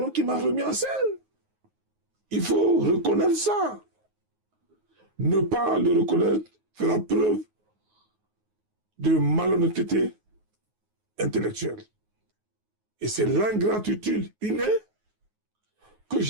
qui m'a remis en scène. Il faut reconnaître ça. Ne pas le reconnaître fera preuve de malhonnêteté intellectuelle. Et c'est l'ingratitude innée que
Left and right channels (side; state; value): left; late; 9.4 ms